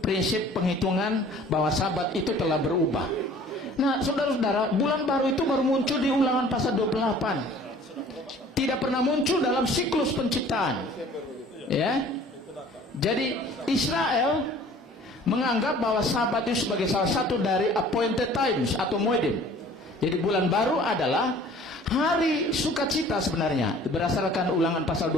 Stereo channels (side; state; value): both; normal; correlation 0.50